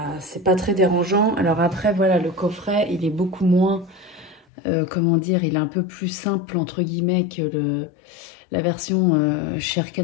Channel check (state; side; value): drops out; right; at 4.5 s